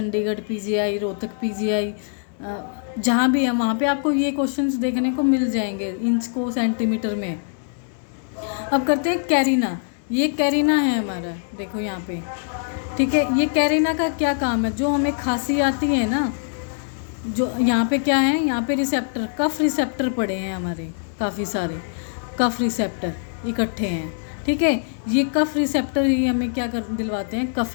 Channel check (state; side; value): silent; right; 63 dB below the other